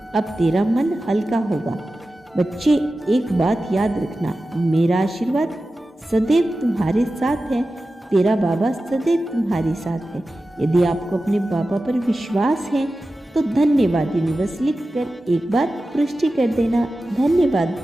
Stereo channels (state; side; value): normal; both; correlation 0.94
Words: अब तेरा मन हल्का होगा। बच्चे, एक बात याद रखना, मेरा आशीर्वाद सदैव तुम्हारे साथ है। तेरा बाबा सदैव तुम्हारे साथ है। यदि आपको अपने बाबा पर विश्वास है तो धन्यवाद यूनिवर्स लिखकर एक बार पुष्टि कर देना। धन्यवाद